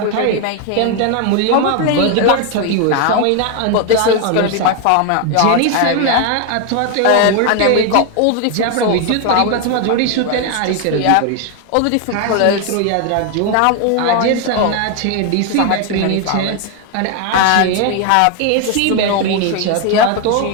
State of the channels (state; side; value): different; both; correlation 0.01